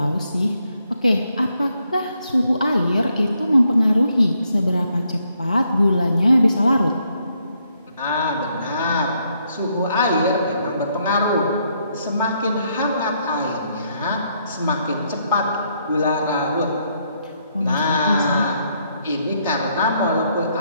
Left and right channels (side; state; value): both; inverted; correlation -0.74